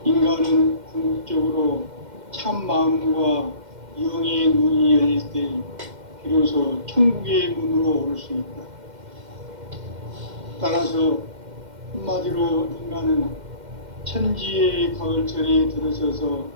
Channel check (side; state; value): left; late; 2.1 ms